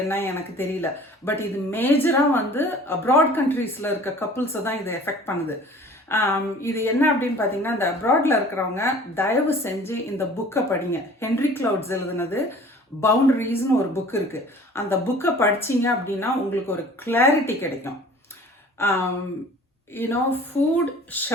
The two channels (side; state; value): both; normal; correlation 0.47